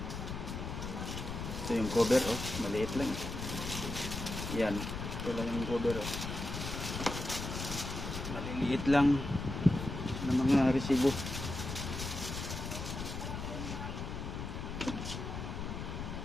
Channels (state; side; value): noise; left; rumble, 5 dB below the sound